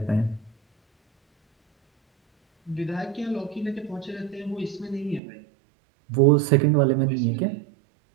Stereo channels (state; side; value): drops out; left; at 5.2 s